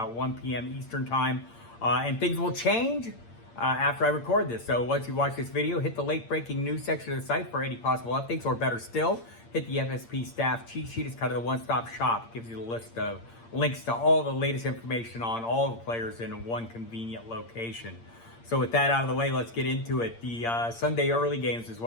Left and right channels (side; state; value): right; late; 8.7 ms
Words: 1 p.m. Eastern time, and things will change after I record this. So once you watch this video, hit the late breaking news section of the site for any possible updates, or better still, hit the FSP staff cheat sheet. It's kind of the one-stop shop. It gives you the list of links to all the latest information on all the players in one convenient location. So with that out of the way, let's get into it. The Sunday early games is